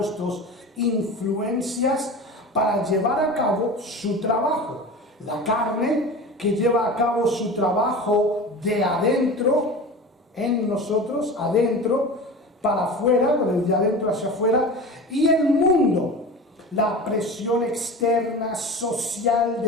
influencias para llevar a cabo su trabajo. La carne, que lleva a cabo su trabajo de adentro, en nosotros, adentro, para afuera, de adentro hacia afuera, y el mundo, la presión externa, social,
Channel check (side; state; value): both; normal; correlation 0.33